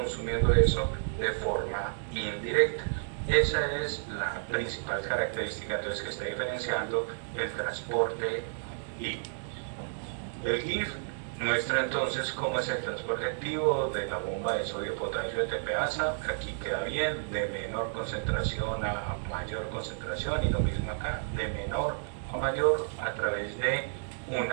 eso de forma indirecta. Esa es la principal característica entonces que está diferenciando el transporte activo. El GIF muestra entonces cómo es el transporte activo de la bomba de sodio, potasio, ATPasa. Aquí queda bien, de menor concentración a mayor concentración, y lo mismo acá, de menor a mayor a través de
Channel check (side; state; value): left; silent; digital silence